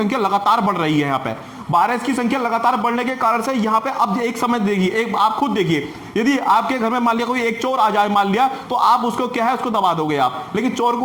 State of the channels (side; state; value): both; identical; correlation 1.00